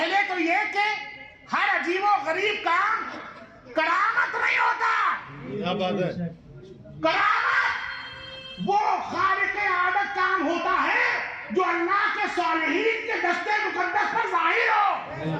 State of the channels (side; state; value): both; identical; correlation 1.00